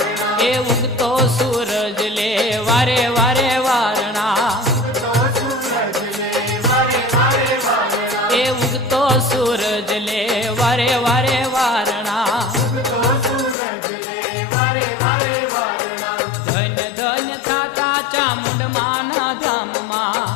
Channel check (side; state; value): right; drops out; at 13.6 s